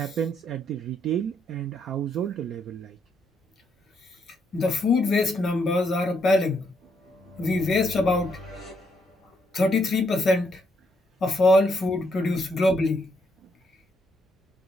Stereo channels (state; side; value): normal; both; correlation 0.75